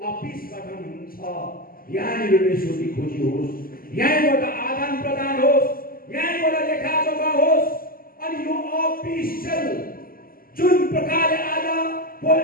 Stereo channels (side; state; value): right; late; 0.42 ms